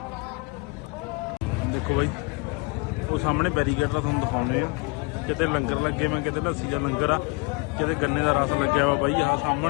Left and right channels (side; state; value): right; quieter; 28.7 dB